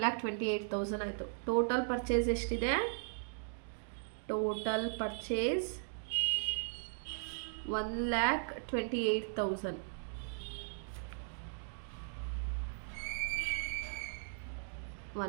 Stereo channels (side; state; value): left; silent; digital silence